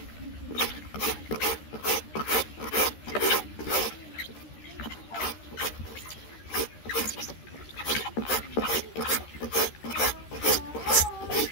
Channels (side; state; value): right; late; 13 ms